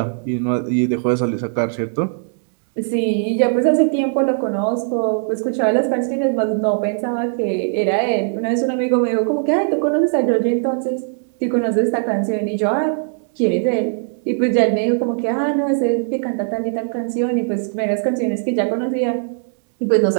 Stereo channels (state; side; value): silent; left; digital silence